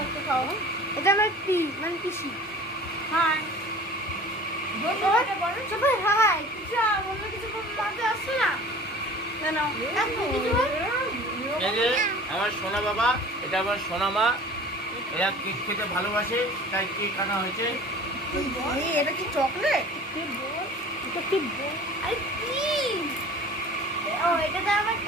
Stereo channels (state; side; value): normal; both; correlation 0.43